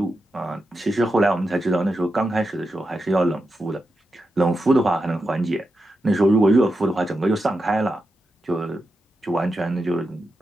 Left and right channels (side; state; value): both; normal; correlation 0.88